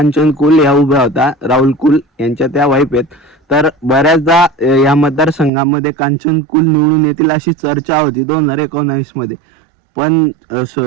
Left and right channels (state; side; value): drops out; left; at 5.5 s